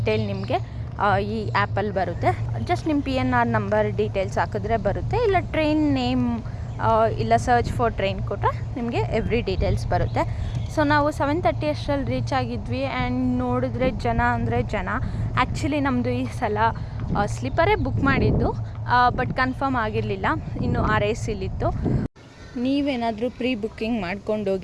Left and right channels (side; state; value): both; identical; correlation 1.00